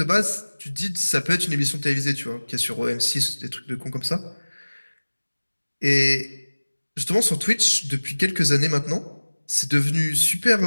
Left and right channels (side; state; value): both; inverted; correlation -1.00